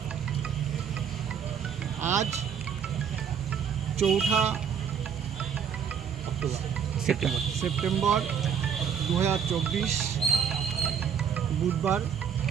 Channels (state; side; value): quieter; left; 7.6 dB